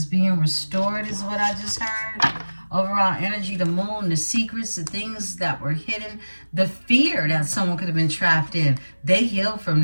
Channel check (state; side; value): inverted; both; correlation -1.00